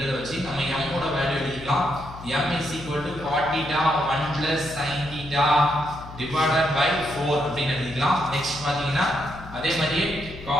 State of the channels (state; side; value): noise; left; hum, 15 dB below the sound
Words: வச்சு நம்ம m ஓட வேல்யூ எழுதிக்கலாம். m is equal to cot theta 1 plus sin theta divided by 4 அப்படினு எழுதிக்கலாம். நெக்ஸ்ட் பாத்தீங்கன்னா அதே மாதிரி